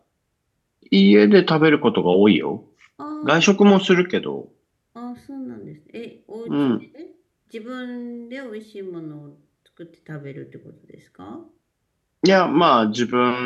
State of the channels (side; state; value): both; identical; correlation 1.00